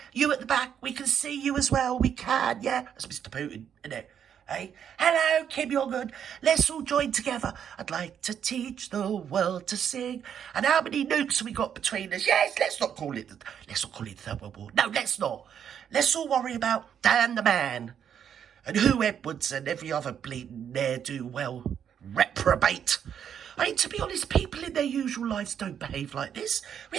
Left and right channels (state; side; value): quieter; left; 8.6 dB